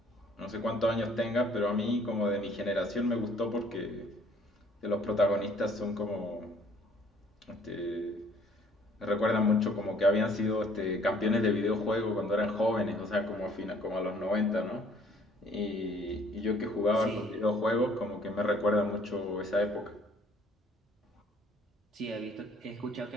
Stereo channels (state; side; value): normal; both; correlation 0.59